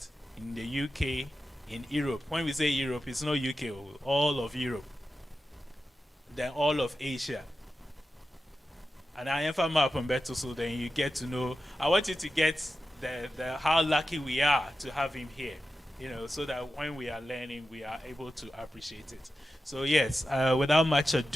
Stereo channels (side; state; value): both; normal; correlation 0.91